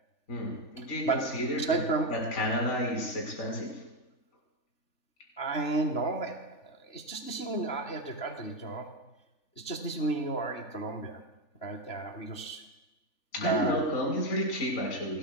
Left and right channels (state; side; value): late; right; 3.4 ms